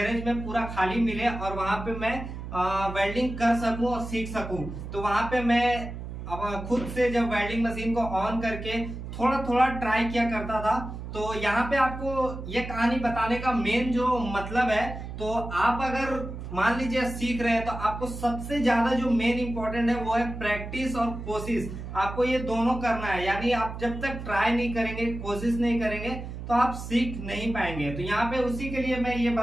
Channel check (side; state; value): right; noise; hum, 9 dB below the sound